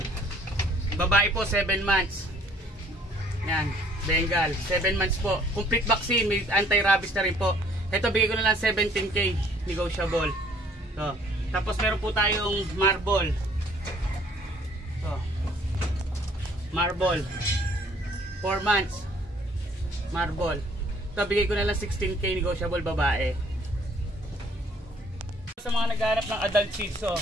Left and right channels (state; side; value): normal; both; correlation 0.59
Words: Babae po, 7 months. Yan, Bengal, 7 months po. Complete vaccine, may anti-rabies na rin po. Ito, bigay ko na lang 17K, negotiable. So, tapos meron po tayong marble. Ito, marble. 4 months. Marble. Ito, bigay ko na lang 16K, negotiable, babae. Sa mga naghahanap ng adult Shih Tzu,